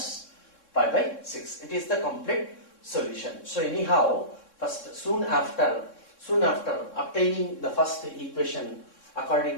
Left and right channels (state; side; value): late; right; 3.6 ms